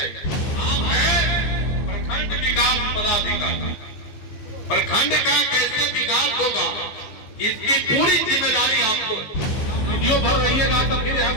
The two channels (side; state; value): right; late; 15 ms